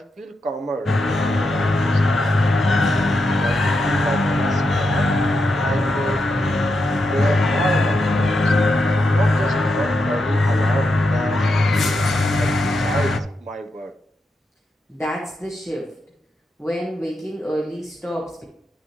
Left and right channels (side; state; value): both; normal; correlation 0.85